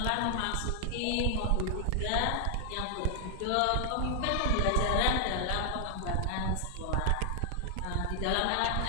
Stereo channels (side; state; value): both; different; correlation 0.00